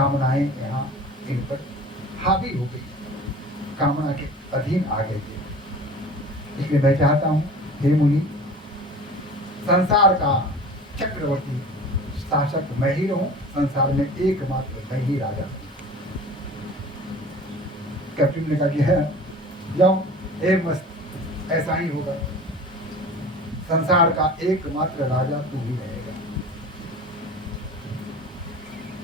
यहाँ इन पर हावी हो गई, कामना के अधीन आ गए थे। इसलिए मैं चाहता हूँ हे मुनि, संसार का चक्रवर्ती शासक मैं ही रहूं, संसार में एकमात्र मैं ही राजा। कैप्टन ने कहा कि है जाओ, एक मस्त ऐसा ही होगा, संसार का एकमात्र राजा तू ही रहेगा।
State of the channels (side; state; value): both; normal; correlation 0.40